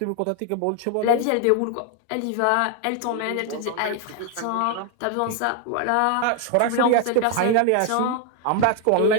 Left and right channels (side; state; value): both; different; correlation 0.01